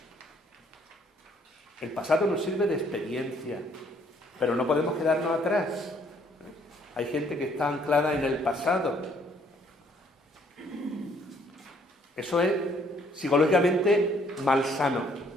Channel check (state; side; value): normal; both; correlation 0.64